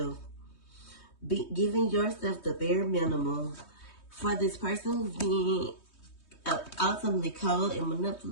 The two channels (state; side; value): late; right; 3.2 ms